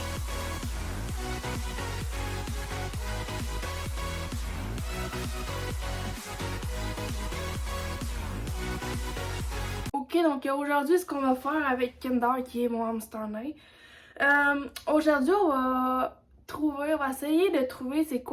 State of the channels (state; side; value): identical; both; correlation 1.00